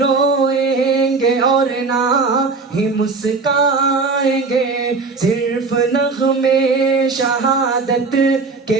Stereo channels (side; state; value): left; quieter; 4.2 dB